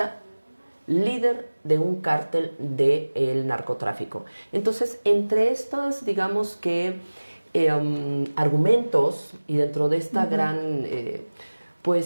líder de un cártel del narcotráfico. Entonces, entre estos, digamos que, argumentos, y dentro de esta gran,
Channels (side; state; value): both; inverted; correlation -1.00